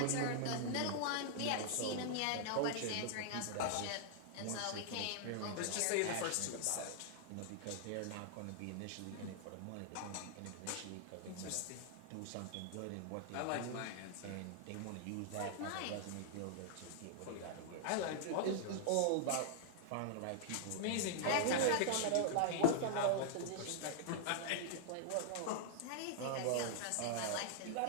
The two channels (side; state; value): both; different; correlation -0.01